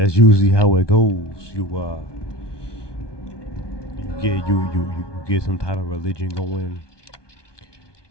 usually how it goes. You get some type of religion going,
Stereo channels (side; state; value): right; late; 1.2 ms